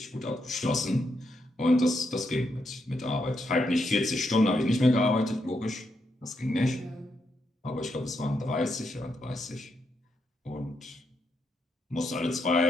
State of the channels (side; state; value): both; normal; correlation 0.80